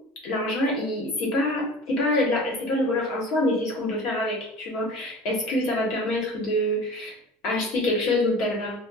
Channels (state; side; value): normal; both; correlation 0.39